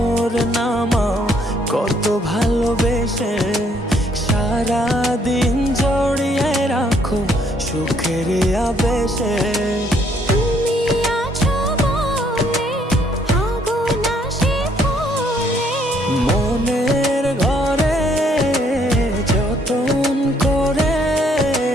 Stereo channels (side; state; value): both; normal; correlation 0.67